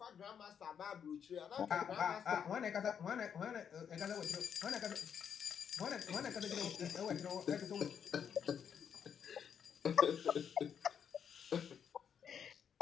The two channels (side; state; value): right; quieter; 7.8 dB